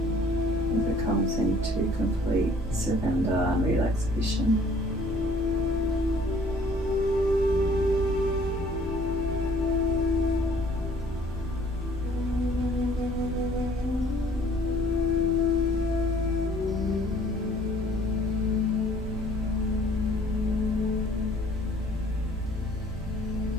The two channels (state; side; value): normal; both; correlation 0.57